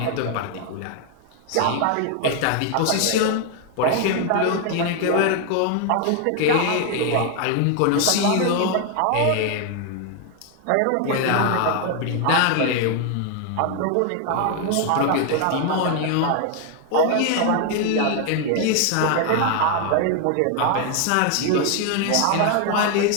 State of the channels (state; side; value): different; both; correlation 0.00